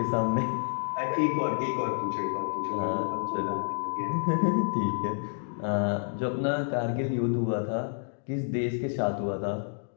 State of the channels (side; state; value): right; silent; digital silence